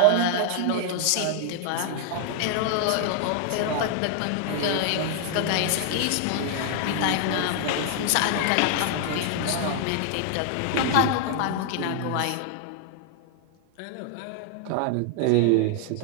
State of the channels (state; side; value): different; both; correlation 0.00